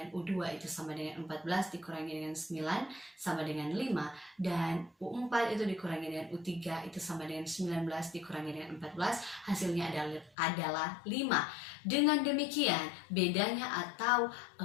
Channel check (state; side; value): drops out; right; at 10.3 s